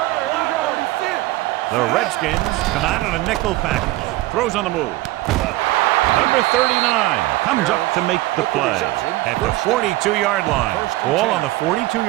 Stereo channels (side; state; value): left; quieter; 18.2 dB